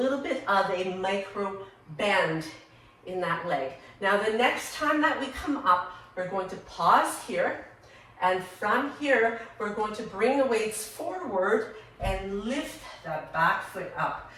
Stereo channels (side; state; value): both; identical; correlation 1.00